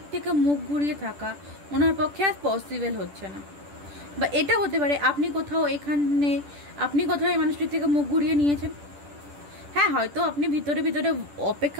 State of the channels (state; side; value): late; left; 10 ms